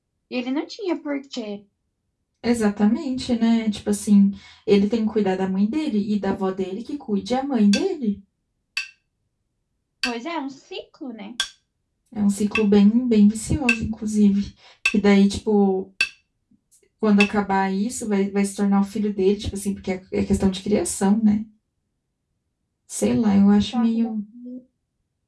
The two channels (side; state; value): both; identical; correlation 1.00